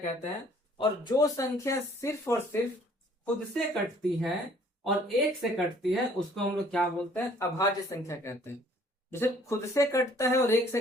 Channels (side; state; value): both; normal; correlation 0.58